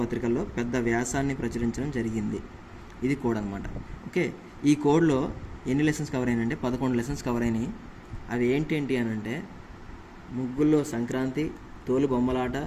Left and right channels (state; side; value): identical; both; correlation 1.00